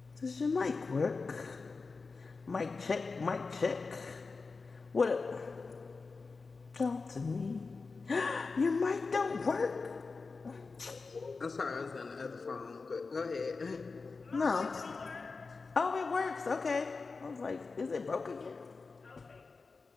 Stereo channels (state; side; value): quieter; right; 4.3 dB